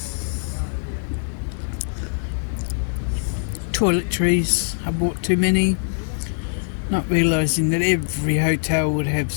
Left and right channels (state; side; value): silent; right; 64 dB below the other